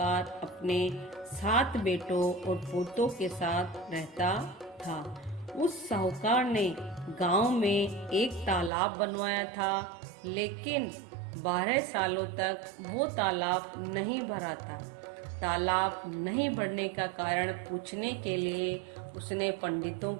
अपने 7 बेटों और पोतों के साथ रहता था। उस साहूकार ने गांव में एक तालाब बनवाया था, लेकिन 12 सालों तक वो तालाब नहीं भरा था। तालाब नहीं भरने का कारण पूछने के लिए उसने पंडितों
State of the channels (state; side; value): drops out; left; at 8.7 s